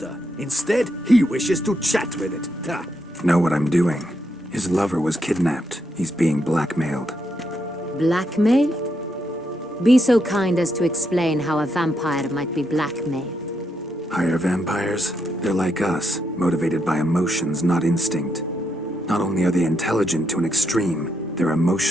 Instead, he wishes to chat with it. Ha! Know what I'm doing. His lover was kidnapped. He's being blackmailed. Blackmailed? Be so kind as to explain how a vampire might be blackmailed. Higher vampires? They're like us, motivated by emotions, not instinct. Not only are they intelligent to an extreme, they're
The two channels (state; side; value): normal; both; correlation 0.80